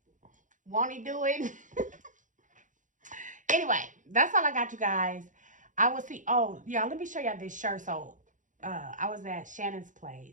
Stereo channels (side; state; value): left; late; 0.37 ms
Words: Won't he do it? Anyway, that's all I got, you guys. I will see. Oh, yeah, let me show y'all this shirt. So, I was at Shannon's